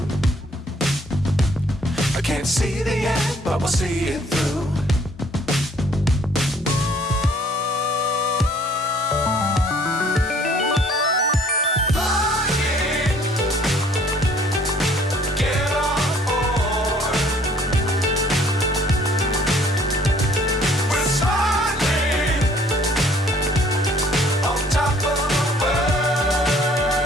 I can't see the end, but we'll see it through.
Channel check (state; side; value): normal; both; correlation 0.59